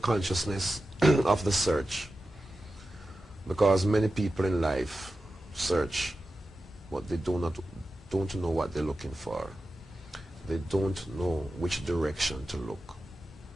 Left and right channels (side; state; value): both; normal; correlation 0.93